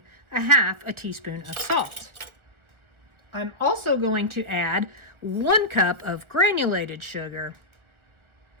a half a teaspoon of salt. I'm also going to add 1 cup of granulated sugar.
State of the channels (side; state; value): left; late; 1.4 ms